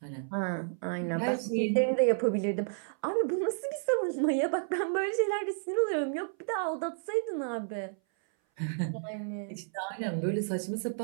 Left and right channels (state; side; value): silent; left; 57 dB below the other